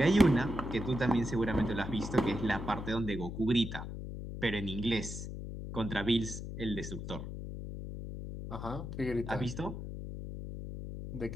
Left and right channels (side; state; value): left; noise; hum, 7 dB below the sound